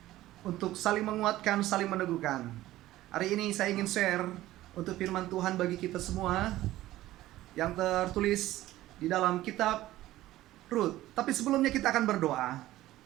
untuk saling menguatkan, saling meneguhkan. Hari ini saya ingin share untuk firman Tuhan bagi kita semua yang tertulis di dalam kitab Rut. Tapi sebelumnya kita akan berdoa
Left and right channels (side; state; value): left; quieter; 15.6 dB